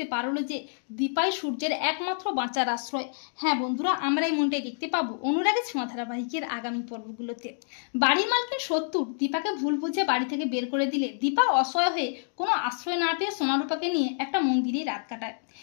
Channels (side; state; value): right; silent; digital silence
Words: পারলো যে দীপাই সূর্যের একমাত্র বাঁচার আশ্রয়। হ্যাঁ বন্ধুরা, আমরা এই মনটাই দেখতে পাবো অনুরাগের ছোঁয়া ধারাবাহিকের আগামী পর্বগুলোতে। বাড়ির মালিকের শত্রু দীপাকে ভুল বুঝে বাড়ি থেকে বের করে দিলে দীপা অসহায় হয়ে কোনো আশ্রয় না পেয়ে সোনারূপাকে নিয়ে একটা মন্দিরে রাত কাটায়।